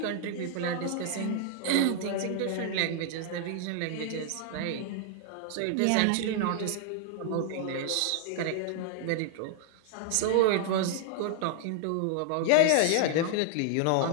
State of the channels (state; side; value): different; both; correlation 0.00